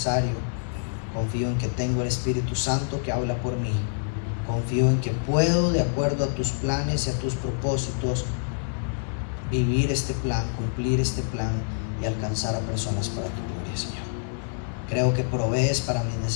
Confío en que tengo el Espíritu Santo que habla por mí. Confío en que puedo, de acuerdo a tus planes y a tus propósitos, vivir este plan, cumplir este plan y alcanzar a personas para tu gloria, Señor. Creo que provees para mis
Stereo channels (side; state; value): right; silent; 59 dB below the other